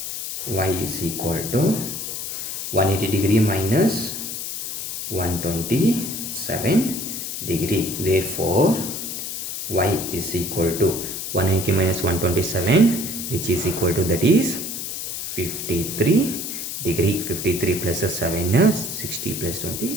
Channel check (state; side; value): noise; left; hiss, 5 dB below the sound